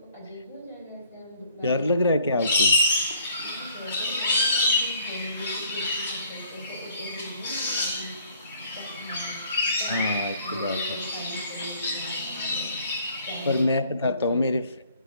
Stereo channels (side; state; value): both; inverted; correlation -0.60